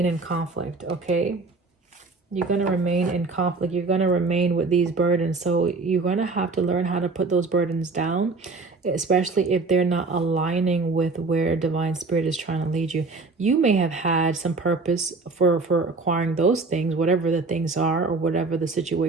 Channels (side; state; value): left; quieter; 3.9 dB